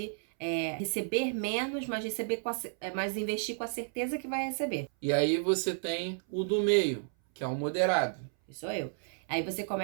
receber menos, mas investir com a certeza que vai receber. E aí você tem o do meio, que é o moderado. Isso sou eu. Aí você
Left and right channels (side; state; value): left; silent; 56 dB below the other